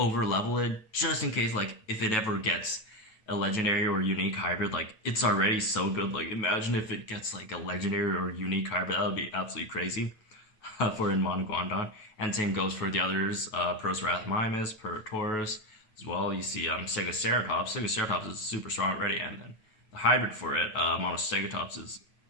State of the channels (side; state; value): right; late; 9.3 ms